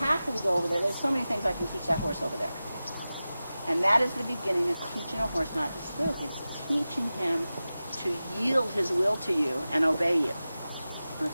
go over there. There's so many things I can teach that horse over there. And that is the beginning of teaching a horse not to spook. It's teaching him to yield his will to you and obey you.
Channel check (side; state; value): both; inverted; correlation -0.95